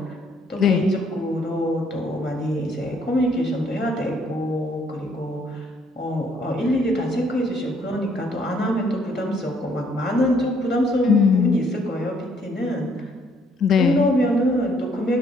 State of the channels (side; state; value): both; normal; correlation 0.66